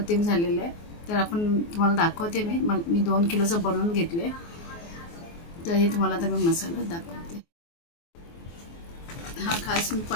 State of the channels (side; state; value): right; late; 24 ms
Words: झालेला आहे. तर आपण तुम्हाला दाखवते. मी 2 किलोचं बनवून घेतले. तर हे तुम्हाला आता मी मसाला दाखवते. हा खास मी